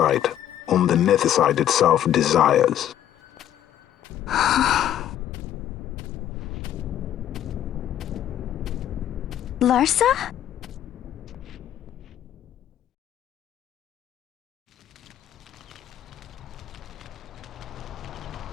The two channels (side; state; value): right; quieter; 11.2 dB